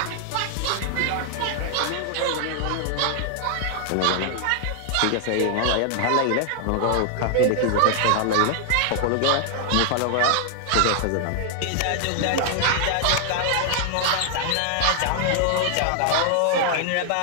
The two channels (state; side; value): different; both; correlation 0.00